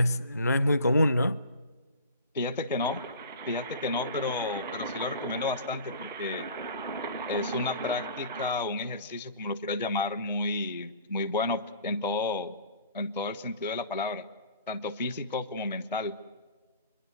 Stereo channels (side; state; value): both; inverted; correlation -0.43